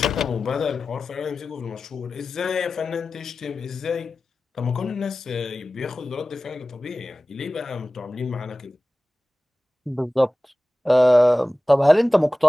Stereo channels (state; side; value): normal; both; correlation 0.96